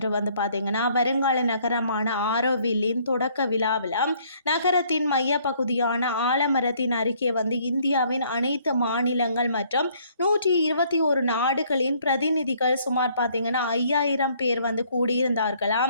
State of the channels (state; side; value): inverted; both; correlation -0.63